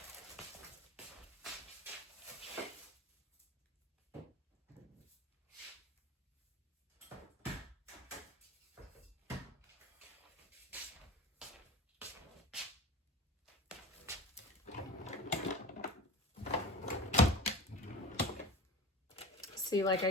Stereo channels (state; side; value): normal; both; correlation 0.33